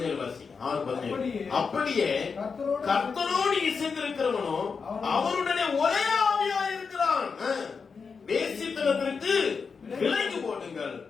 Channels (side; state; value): right; quieter; 5.4 dB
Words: வாசி. 6:17. அப்படியே கர்த்தரோடு இசைந்திருக்கிறவனோ அவருடனே ஒரே ஆவியா இருக்கிறான். வேசித்தனத்திற்கு விலகி போடுங்கள்.